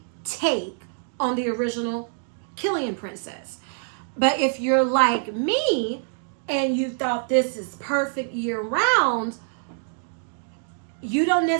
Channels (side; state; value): left; silent; digital silence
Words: take on the original Kilian Princess. But if you're like me and you thought this is perfect year round, you don't